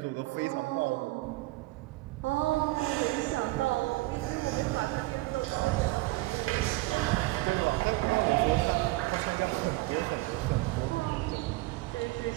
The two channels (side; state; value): left; quieter; 20.6 dB